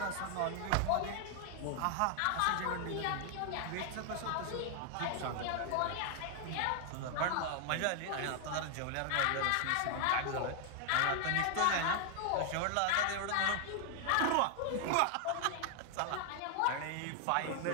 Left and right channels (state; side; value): different; both; correlation 0.00